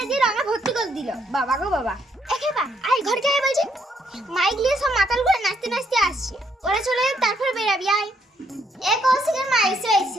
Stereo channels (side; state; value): both; normal; correlation 0.72